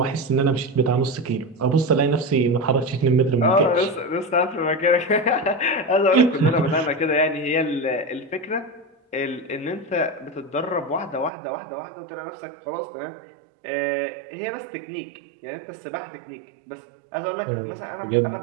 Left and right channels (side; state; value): left; drops out; at 11.3 s